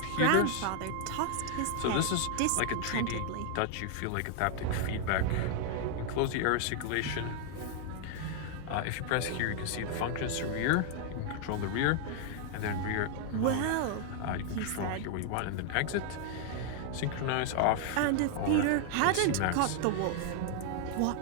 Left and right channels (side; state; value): both; different; correlation 0.00